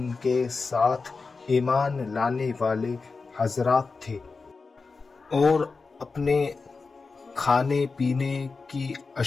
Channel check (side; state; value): right; quieter; 4.3 dB